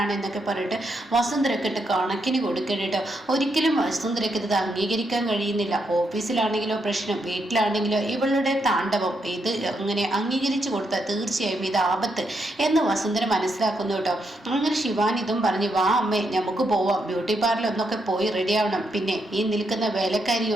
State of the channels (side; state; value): both; normal; correlation 0.80